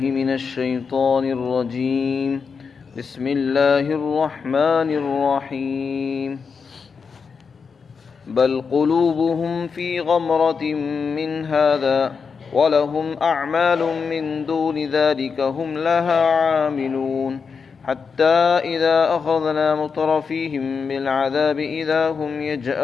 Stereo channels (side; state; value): right; quieter; 5.6 dB